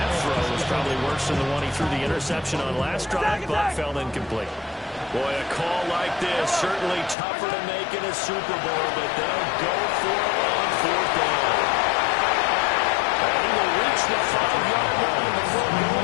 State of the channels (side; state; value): right; drops out; at 7.2 s